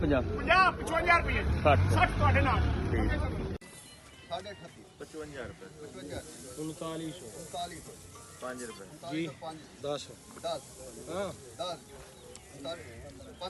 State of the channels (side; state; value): both; identical; correlation 1.00